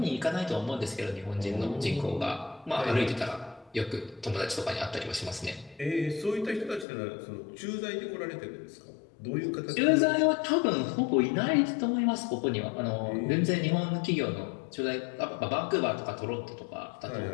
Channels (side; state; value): right; drops out; at 6.9 s